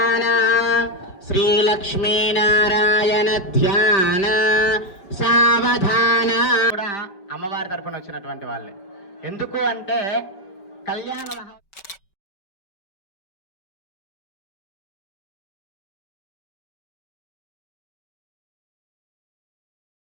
శ్రీలక్ష్మీనారాయణ ధ్యాన సావధాన కూడా అమ్మవారి తరపున వచ్చినటువంటి వాళ్ళే. ఎందుకు అంటే కళ్యాణ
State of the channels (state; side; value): late; right; 5.3 ms